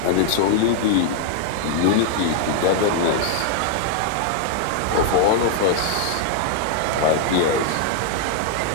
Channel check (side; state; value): both; different; correlation 0.00